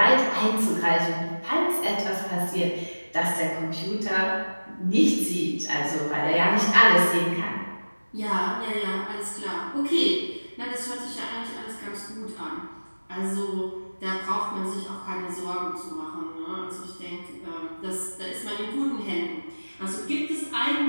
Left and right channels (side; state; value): both; inverted; correlation -1.00